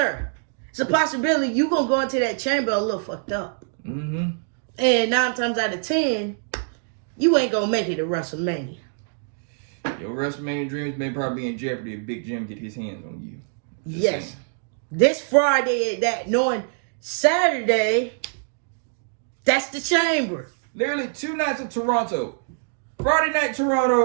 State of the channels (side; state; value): left; silent; digital silence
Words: it's a possibility you gonna go into that chamber a little fucked up. Mm-hmm. And 9 times out of 10, you ain't gonna make it to WrestleMania. Your WrestleMania dreams may probably be in jeopardy if Big Jim get his hands on you. Yes. This Friday, that knowing Saturday, that's the chamber. Literally 2 nights of Toronto. Friday night